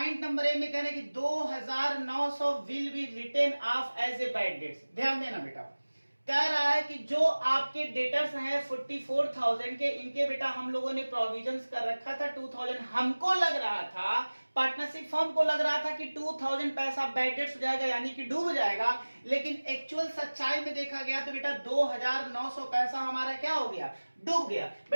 नंबर ए में कह रहे हैं कि 2900 will be written off as a bad debts. ध्यान देना बेटा, कह रहा है कि जो आपके डेटर्स हैं 44,000 के, इनके बेटा हम लोगों ने प्रोविजंस कर रखा था 2000। हमको लग रहा था, पार्टनरशिप फर्म को लग रहा था कि 2000 पैसा बैड डेट्स हो जाएगा यानी कि डूब जाएगा, लेकिन एक्चुअल सच्चाई में देखा गया तो बेटा 2900 पैसा हमारा क्या हो गया, डूब गया।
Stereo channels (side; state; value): both; inverted; correlation -1.00